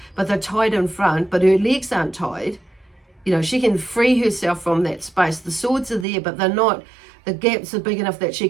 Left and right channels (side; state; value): left; drops out; at 6.1 s